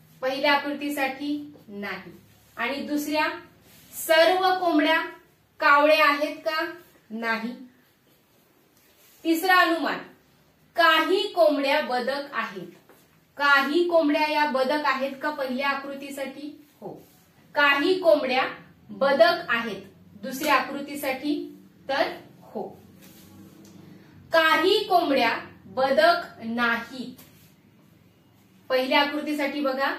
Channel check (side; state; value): both; identical; correlation 1.00